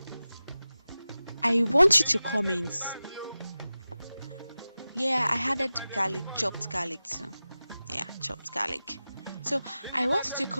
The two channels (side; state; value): both; inverted; correlation -0.95